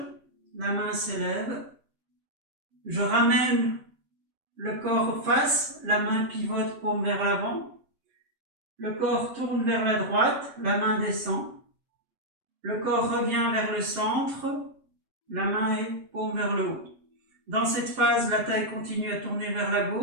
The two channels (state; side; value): late; left; 7.6 ms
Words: la main s'élève, je ramène le corps face, la main pivote, paume vers l'avant, le corps tourne vers la droite, la main descend, le corps revient vers le centre, la main est paume vers le haut. Dans cette phase, la taille continue à tourner vers la